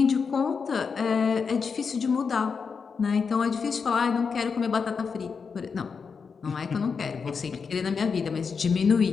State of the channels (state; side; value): quieter; right; 5.6 dB